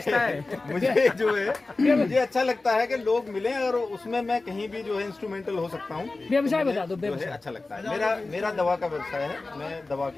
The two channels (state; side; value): quieter; right; 3.4 dB